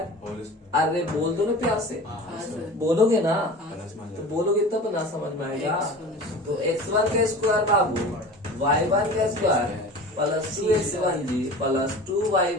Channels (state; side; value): normal; both; correlation 0.37